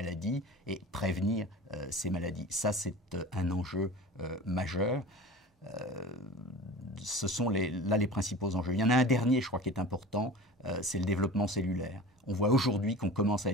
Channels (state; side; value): normal; both; correlation 0.37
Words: et prévenir ces maladies. Ça, c'est un enjeu majeur. Ce sont là les principaux enjeux. Il y en a un dernier, je crois, qui est important, c'est le développement cellulaire. On voit aujourd'hui qu'on commence à